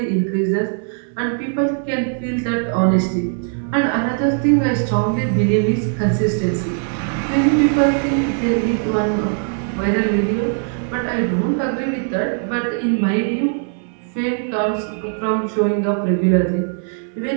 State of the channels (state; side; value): silent; left; 59 dB below the other